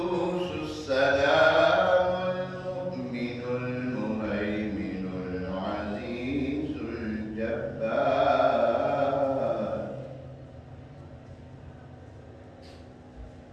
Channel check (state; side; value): identical; both; correlation 1.00